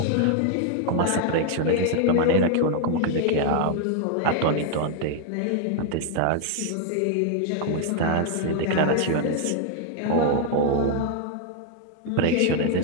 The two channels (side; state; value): both; different; correlation 0.00